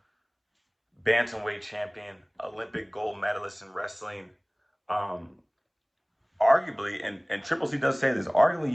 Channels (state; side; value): identical; both; correlation 1.00